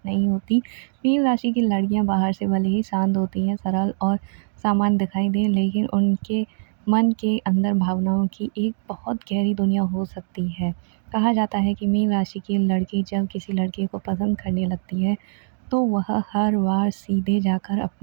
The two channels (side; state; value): left; silent; digital silence